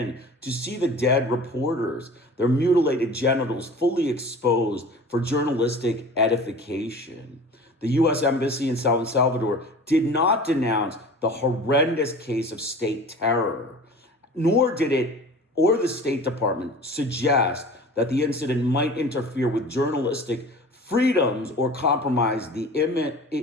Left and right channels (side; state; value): both; normal; correlation 0.40